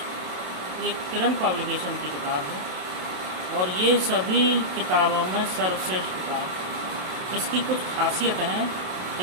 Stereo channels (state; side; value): late; left; 27 ms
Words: ये किरण पब्लिकेशन की किताब है और ये सभी किताबों में सर्वश्रेष्ठ किताब है। इसकी कुछ खासियत हैं,